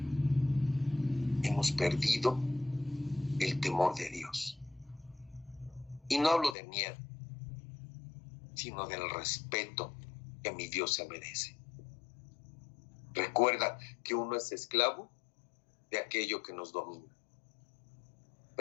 Hemos perdido el temor de Dios. Y no hablo de miedo, sino del respeto que mi Dios se merece. Recuerda que uno es esclavo de aquello que nos domina.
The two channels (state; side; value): drops out; right; at 6.6 s